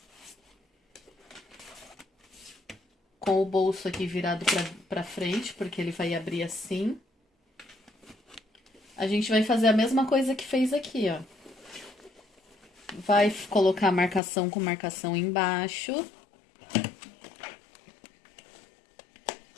Com o bolso aqui virado pra frente, porque ele vai abrir assim. A gente vai fazer a mesma coisa que fez aqui, ó. Vai colocar marcação com marcação embaixo.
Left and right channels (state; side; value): drops out; right; at 14.2 s